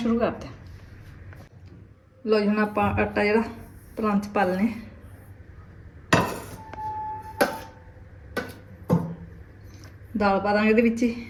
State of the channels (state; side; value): identical; both; correlation 1.00